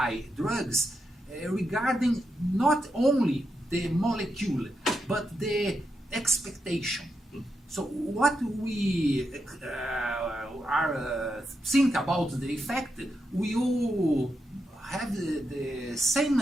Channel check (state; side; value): normal; both; correlation 0.85